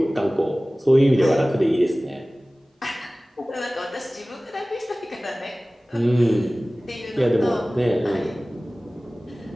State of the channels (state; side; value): normal; both; correlation 0.98